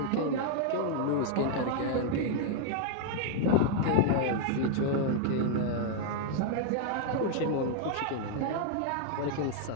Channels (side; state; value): both; different; correlation 0.00